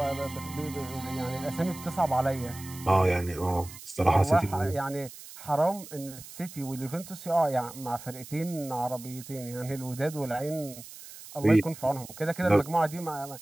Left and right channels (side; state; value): right; noise; hiss, 15 dB below the sound